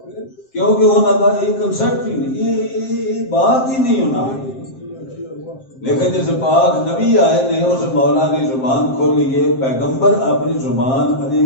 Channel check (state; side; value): late; right; 7.6 ms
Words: کیونکہ ہونا تھا ایک کنسپٹ ہی نہیں یہ بات ہی نہیں ہونا لیکن جیسے پاک نبی آئے نے اس مولا کی زبان کھولیے پیغمبر اپنی زبان